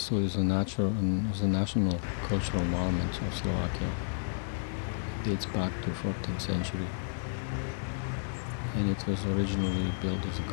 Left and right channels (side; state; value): right; silent; digital silence